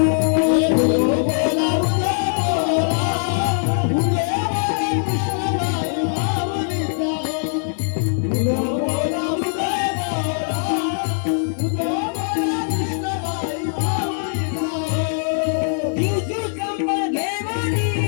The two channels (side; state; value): right; silent; digital silence